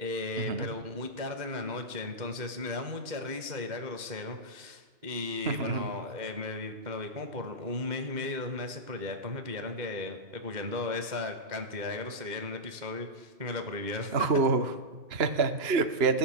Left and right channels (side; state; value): left; late; 2.1 ms